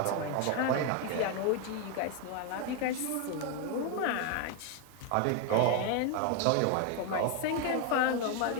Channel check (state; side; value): different; both; correlation 0.01